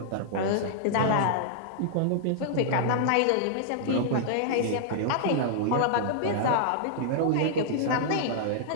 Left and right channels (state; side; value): different; both; correlation -0.01